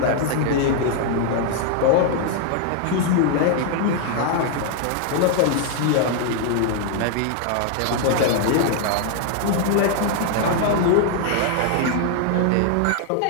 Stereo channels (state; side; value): different; both; correlation 0.00